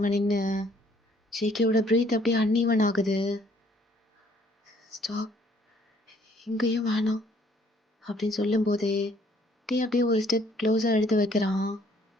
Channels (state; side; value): normal; both; correlation 0.62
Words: நின்று. ஜேகேவோட ப்ரீத் அப்படியே அன்ஈவன் ஆகுது. ஸ்டாப், இங்கேயும் வேணாம் அப்படின்னு சொல்லும்போதே அப்படியே ஒரு ஸ்டெப் க்ளோஸாக எடுத்து வைக்கிறான்.